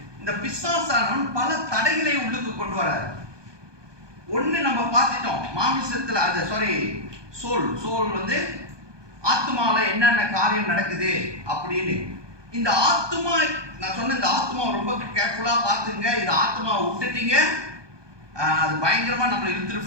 இந்த பிசாசானவன் பல தடைகளை உள்ளுக்கு கொண்டு வராரு. ஒண்ணு நம்ம பார்த்துட்டோம், மாமிசத்துல அது சோல் வந்து ஆத்மால என்னென்ன காரியம் நடக்குது அப்படின்னு. இந்த ஆத்மா, நான் சொன்ன இந்த ஆத்மா ரொம்ப கேர்ஃபுல்லா பார்த்துங்க, இந்த ஆத்மாவை விட்டுட்டீங்க அது பயங்கரமா நம்மளை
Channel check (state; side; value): late; left; 1.2 ms